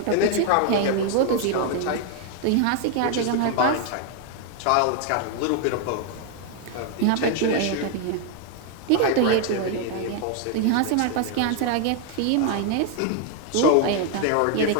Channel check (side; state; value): both; different; correlation 0.00